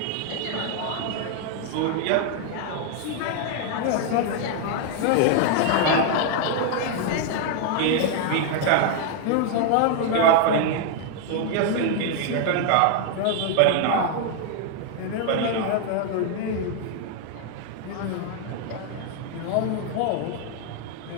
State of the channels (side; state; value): both; different; correlation 0.00